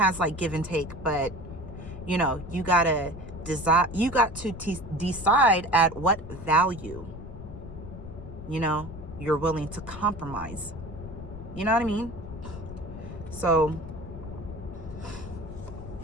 like give and take, but you got to decide at what value you're willing to compromise. You know what I mean? So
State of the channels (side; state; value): left; noise; rumble, 12 dB below the sound